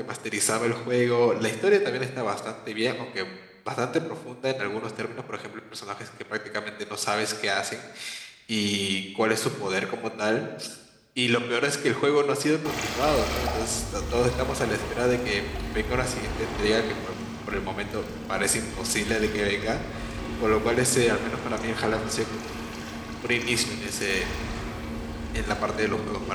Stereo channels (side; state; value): both; identical; correlation 1.00